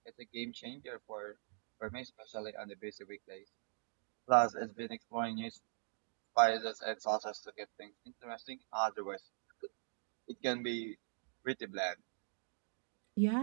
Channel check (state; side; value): silent; left; digital silence